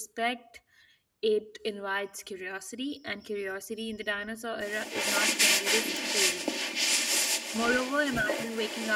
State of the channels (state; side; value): identical; both; correlation 1.00